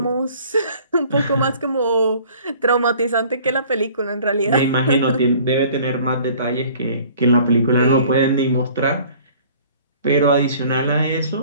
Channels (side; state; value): both; inverted; correlation -0.51